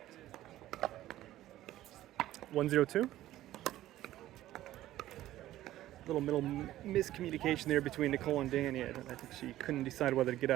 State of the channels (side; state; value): left; quieter; 14.4 dB